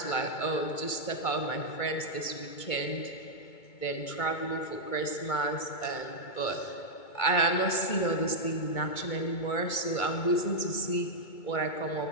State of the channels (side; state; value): right; late; 2.2 ms